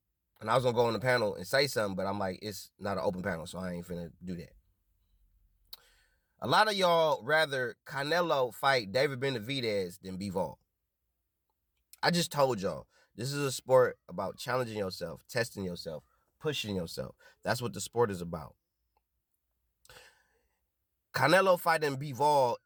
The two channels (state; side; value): identical; both; correlation 1.00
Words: And I was going to go on the panel and say something, but I'm like, it's not an open panel, so I ain't finna do that. A lot of y'all rather Canelo fight David Benavidez than Bivol. I just told y'all, this is a sport about challenging yourself, testing yourself, pushing yourself. That's what the sport is about. Canelo fighting Bivol